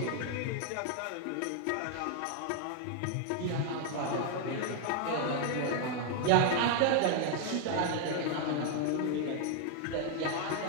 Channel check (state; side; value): different; both; correlation 0.00